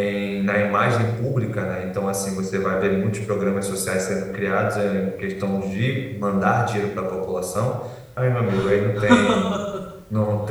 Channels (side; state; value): both; identical; correlation 1.00